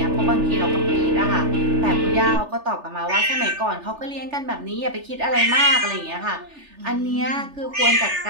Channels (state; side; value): late; left; 3.4 ms